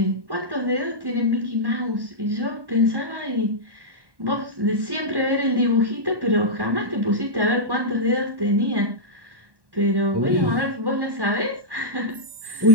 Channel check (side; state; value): left; late; 1.1 ms